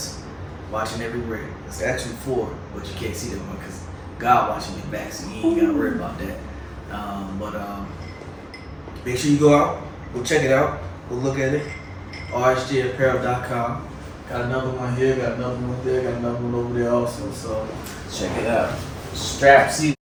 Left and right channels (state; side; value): identical; both; correlation 1.00